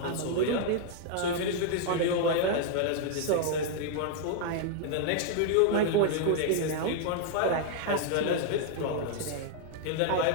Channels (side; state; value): both; different; correlation 0.00